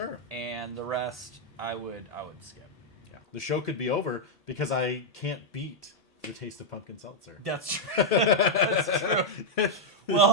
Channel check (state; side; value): normal; both; correlation -0.03